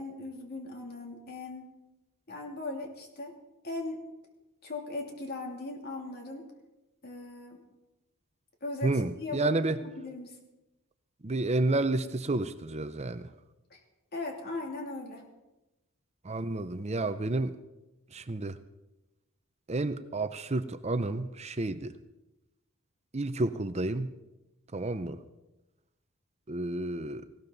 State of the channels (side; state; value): both; normal; correlation 0.52